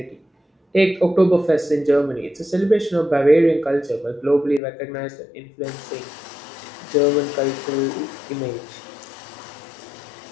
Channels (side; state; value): right; drops out; at 4.6 s